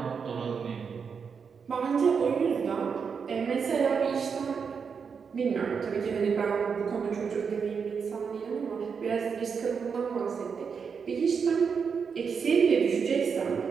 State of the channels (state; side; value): quieter; left; 6.1 dB